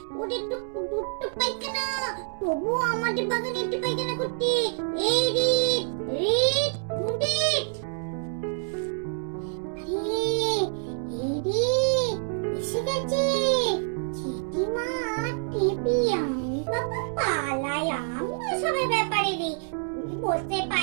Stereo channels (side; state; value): left; silent; digital silence